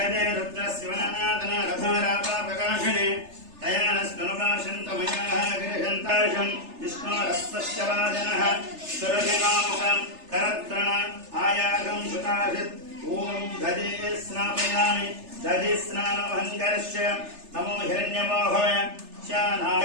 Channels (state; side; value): late; left; 3.3 ms